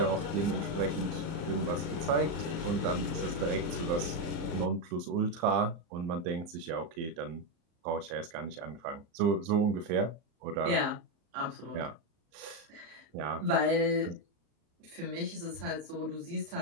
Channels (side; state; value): left; late; 35 ms